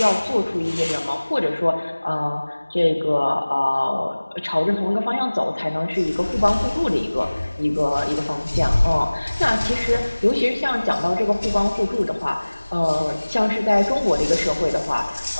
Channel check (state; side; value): inverted; both; correlation -1.00